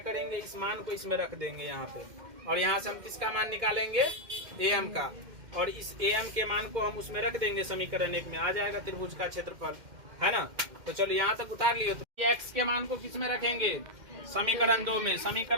इस मान को इसमें रख देंगे यहाँ पे, और यहाँ से हम किसका मान निकालेंगे, am का, और इस am के मान को हम उसमें रख देंगे समीकरण 1 में, आ जाएगा त्रिभुज का क्षेत्रफल, है ना। तो चलो यहाँ तक उतार लिए। तो x के मान को किस में रखेंगे, समीकरण 2 में।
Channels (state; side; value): late; left; 2.1 ms